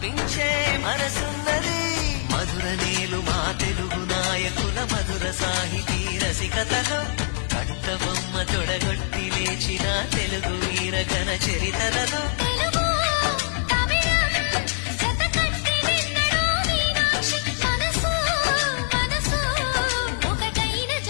మనసున్నది మధుర నీలు మా తెలుగు నాయకుల మధుర సాహితీ రసికతలో కట్టబొమ్మ తొడగొట్టి లేచిన తెలుగు వీరగణ చరితలలో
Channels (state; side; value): silent; right; 63 dB below the other